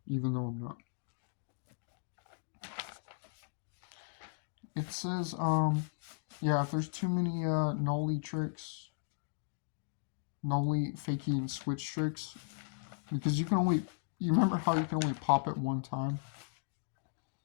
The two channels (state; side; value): silent; right; digital silence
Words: even though I'm not. It says, yeah, if there's too many nollie tricks, nollie fakie and switch tricks, because you remember how you can only pop it one time?